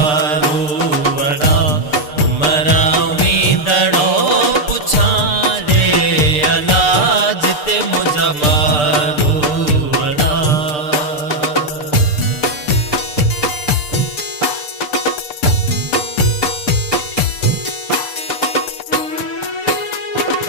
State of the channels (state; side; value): late; right; 6.7 ms